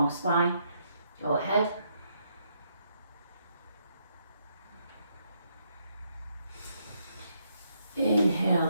spine, go ahead.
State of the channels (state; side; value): inverted; both; correlation -0.75